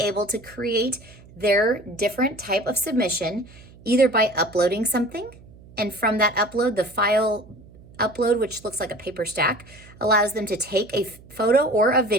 to create their different type of submission either by uploading something, and from that upload, the file upload, which looks like a paper stack, allows them to take a photo or a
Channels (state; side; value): noise; right; hum, 22 dB below the sound